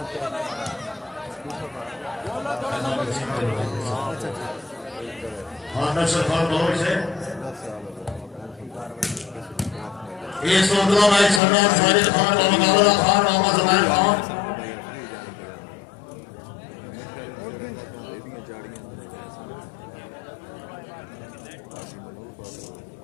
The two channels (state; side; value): drops out; right; at 11.4 s